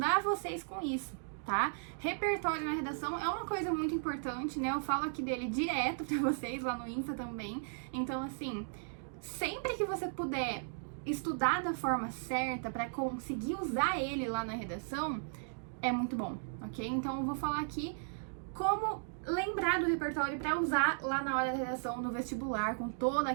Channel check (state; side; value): silent; left; digital silence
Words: vocês com isso. Tá? Repertório na redação é uma coisa muito importante, né? Eu falo aqui dele direto pra vocês lá no Insta também. Então, assim, sempre que você puder estudar da forma certa pra conseguir usar ele lá na redação, é muito bom, ok? Então, eu vou falar aqui como lembrar do repertório pra usar lá na hora da redação no vestibular, com toda